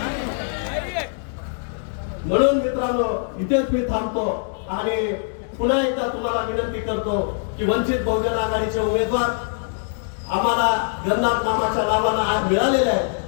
म्हणून मित्रांनो, इथेच मी थांबतो आणि पुन्हा एकदा तुम्हाला विनंती करतो की वंचित बहुजन आघाडीचे उमेदवार आम्हाला गणनाथ मामाच्या नावानं आज मिळालेले आहे,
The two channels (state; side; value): silent; right; digital silence